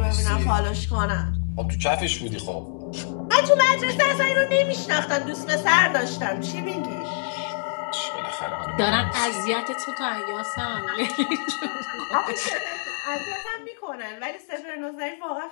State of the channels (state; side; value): silent; right; digital silence